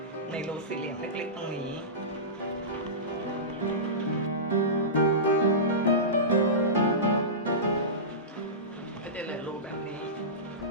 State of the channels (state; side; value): normal; both; correlation -0.20